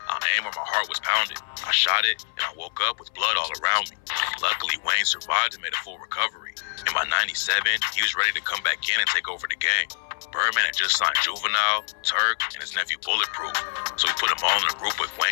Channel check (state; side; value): silent; right; 57 dB below the other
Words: I aimed where my heart was pounded. I shot it, and I woke up with blood all around me." Luckily, Wayne survived and made a full recovery. And by '97, he was ready to come back in and take over the game. Birdman had just signed Juvenile, Turk, and his nephew Bulletproof, so he put them all in a group with